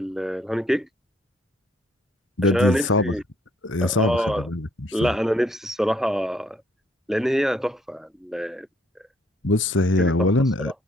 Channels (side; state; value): both; normal; correlation 0.66